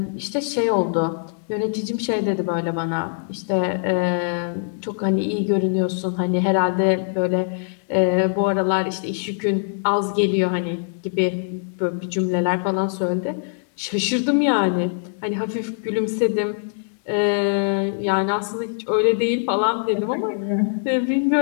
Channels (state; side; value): silent; right; digital silence